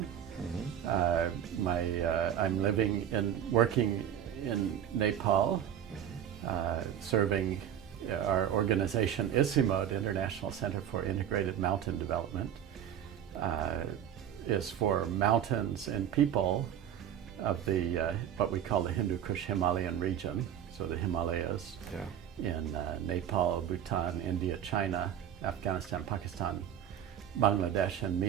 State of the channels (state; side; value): quieter; left; 10.0 dB